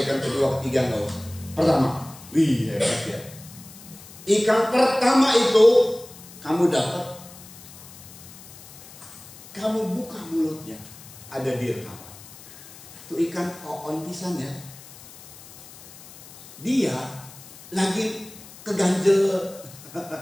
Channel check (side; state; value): left; noise; hiss, 18 dB below the sound